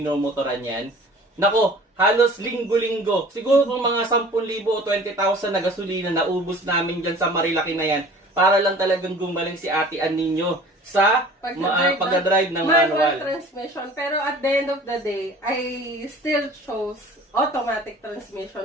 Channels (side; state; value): both; normal; correlation 0.46